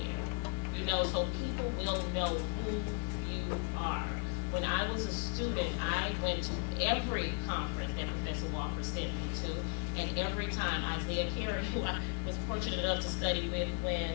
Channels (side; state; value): right; silent; digital silence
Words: you know, so people will know who you are. When I was a student, I went to every conference that Professor Walker sent me to, and every time Isaiah Carey, who I was fortunate enough to study with when